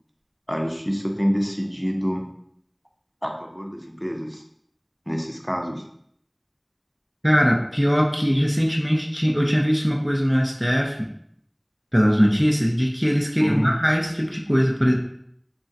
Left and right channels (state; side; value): identical; both; correlation 1.00